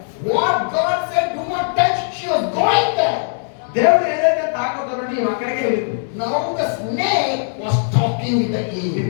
What God said, do not touch, she was going there. దేవుడు ఏదైతే తాకొద్దనో నీవు అక్కడికే వెళ్ళింది. Now the snake was talking with the Eve.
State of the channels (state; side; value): silent; right; digital silence